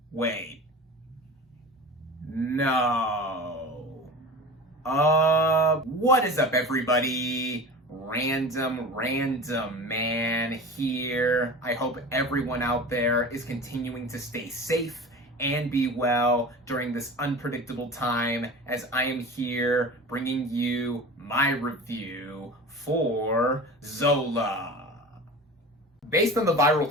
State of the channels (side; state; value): both; normal; correlation 0.35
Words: Wait. No. What is up, everybody? RandomRandomMan here. I hope everyone out there is continuing to stay safe and be well during this unpredictable time, as I am here bringing you my review for Zola. Based on the